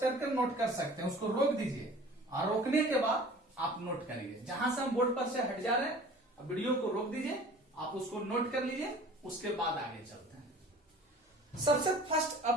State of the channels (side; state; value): both; normal; correlation 0.45